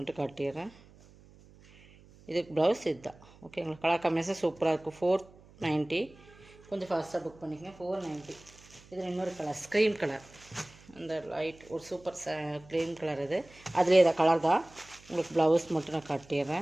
காட்டிடுறேன். இதுக்கு ப்ளவுஸ் இதுதான், ஓகேங்களா? கலர் காம்பினேஷன் சூப்பராக இருக்கும். 490. கொஞ்சம் ஃபாஸ்ட்டாக புக் பண்ணிக்கங்க. 490. இதில் இன்னொரு கலர் ஸ்க்ரீன் கலர், அந்த லைட் ஒரு சூப்பர் க்ரீன் கலர். இது அதுலேயே இதை கலர் தான். உங்களுக்கு ப்ளவுஸ் மட்டும் நான்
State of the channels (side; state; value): right; noise; hum, 24 dB below the sound